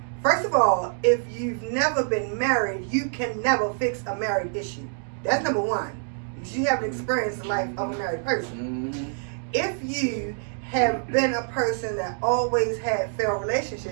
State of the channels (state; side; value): silent; left; 61 dB below the other